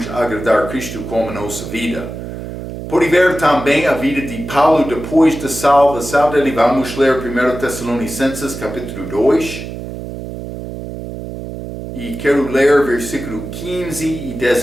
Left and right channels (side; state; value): right; noise; hum, 9 dB below the sound